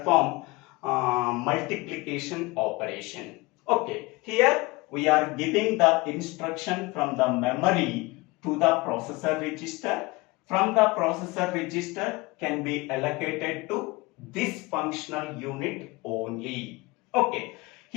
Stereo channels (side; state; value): right; quieter; 23.3 dB